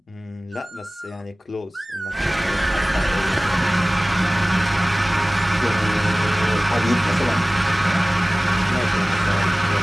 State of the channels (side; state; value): both; normal; correlation 0.98